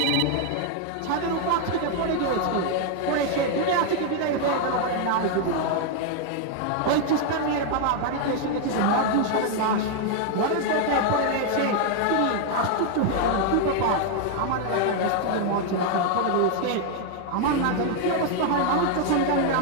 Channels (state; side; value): different; both; correlation 0.00